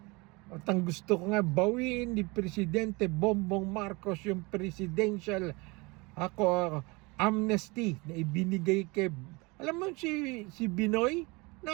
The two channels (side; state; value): left; quieter; 25.9 dB